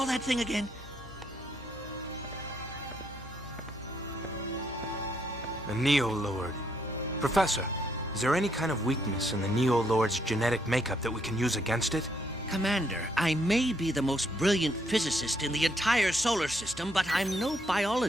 that thing again? The Neo-Lord. Professor, is there any kind of weakness in the Neo-Lord's genetic makeup that we can use against it? Commander, I may be the most brilliant physicist in the entire solar system, but I'm no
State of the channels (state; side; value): normal; both; correlation 0.73